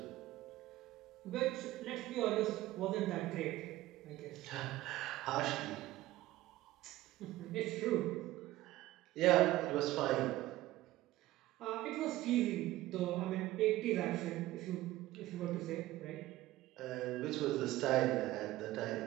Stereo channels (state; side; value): quieter; left; 16.4 dB